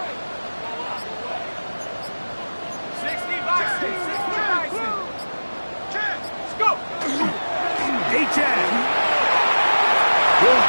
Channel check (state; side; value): inverted; both; correlation -1.00